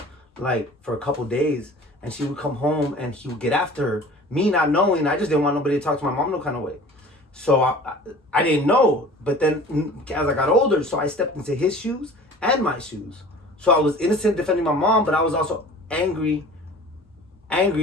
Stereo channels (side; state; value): both; normal; correlation 0.44